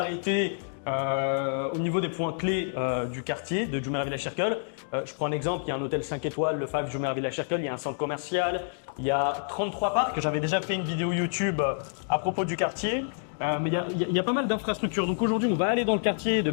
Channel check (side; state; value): right; silent; digital silence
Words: au niveau des points clés du quartier de Jumeirah Village Circle. Je prends un exemple, il y a un hôtel 5 étoiles, le 5 Jumeirah Village Circle, il y a un centre commercial, il y a 33 parcs. J'avais déjà fait une vidéo YouTube à propos du quartier, mais il y a pas mal d'infrastructures. Donc aujourd'hui, on va aller dans le quartier de